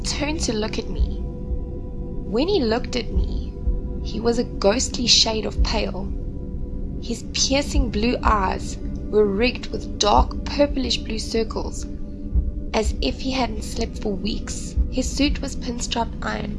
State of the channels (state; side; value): identical; both; correlation 1.00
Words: to look at me. When he looked at me, he was a ghostly shade of pale. His piercing blue eyes were rigged with dark purplish blue circles, as if he hadn't slept for weeks. His suit was pinstripe